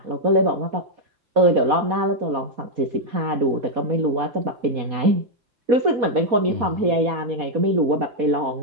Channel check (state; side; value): late; left; 4.2 ms